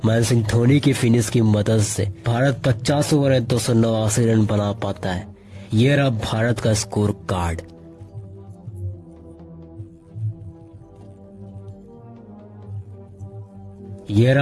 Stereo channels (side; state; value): both; identical; correlation 1.00